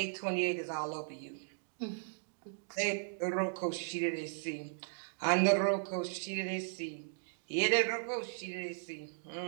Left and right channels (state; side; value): silent; left; digital silence